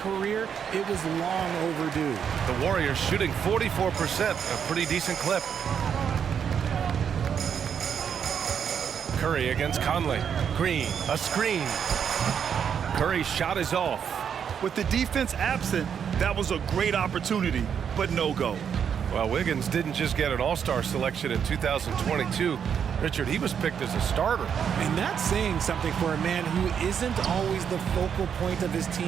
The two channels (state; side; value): quieter; left; 7.7 dB